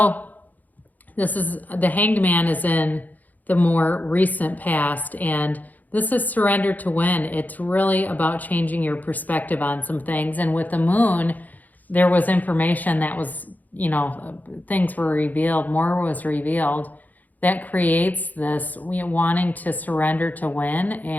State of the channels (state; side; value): late; right; 0.081 ms